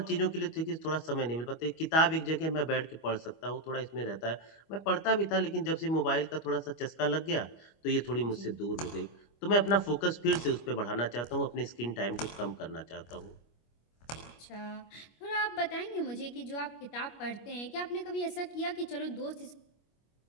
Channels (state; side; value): late; right; 25 ms